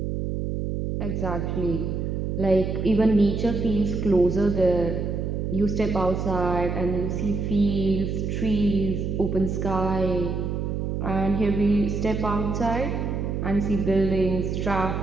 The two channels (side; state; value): right; noise; hum, 2 dB below the sound